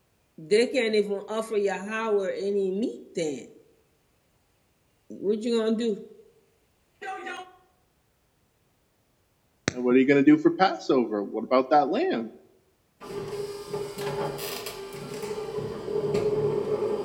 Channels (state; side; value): identical; both; correlation 1.00